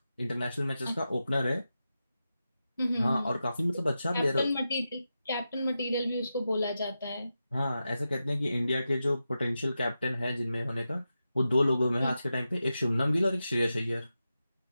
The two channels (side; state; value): both; inverted; correlation -0.90